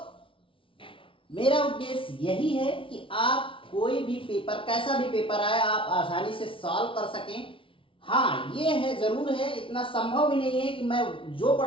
मेरा उद्देश्य यही है कि आप कोई भी पेपर, कैसा भी पेपर आए, आप आसानी से सॉल्व कर सकें। हाँ, ये है, जरूर है, इतना संभव भी नहीं है कि मैं जो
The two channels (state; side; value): late; right; 0.25 ms